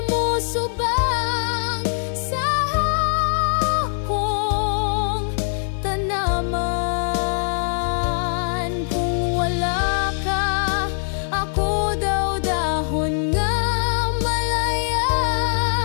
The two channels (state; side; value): silent; right; 64 dB below the other